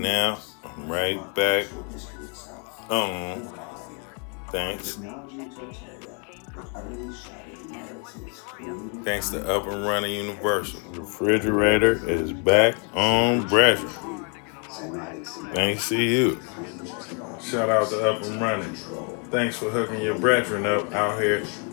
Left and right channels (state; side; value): quieter; right; 38.3 dB